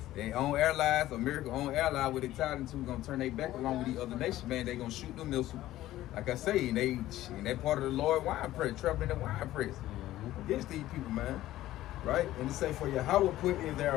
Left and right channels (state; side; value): quieter; right; 14.8 dB